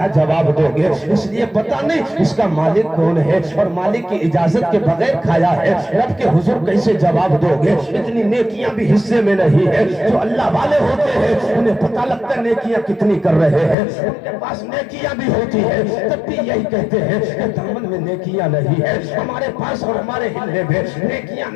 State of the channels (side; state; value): right; drops out; at 13.8 s